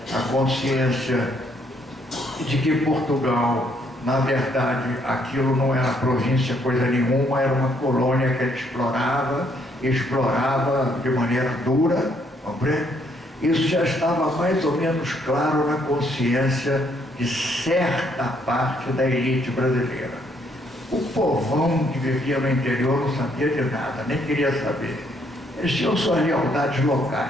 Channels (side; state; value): both; normal; correlation 0.70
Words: a consciência de que Portugal, na verdade, aquilo não era província coisa nenhuma, era uma colônia que ele explorava de maneira dura, compreende? Isso já estava mais ou menos claro na consciência de certa parte da elite brasileira. O povão que vivia no interior não sabia de nada, nem queria saber. Eles tinham suas lealdades